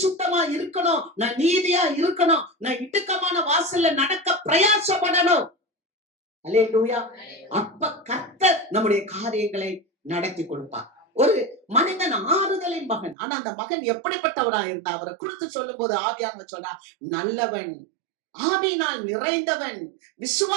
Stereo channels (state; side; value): drops out; left; at 13.2 s